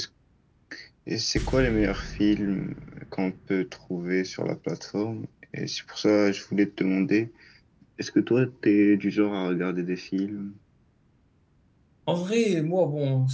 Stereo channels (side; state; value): both; identical; correlation 1.00